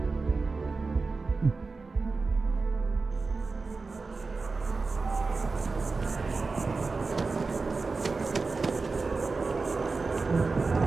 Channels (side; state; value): left; quieter; 4.0 dB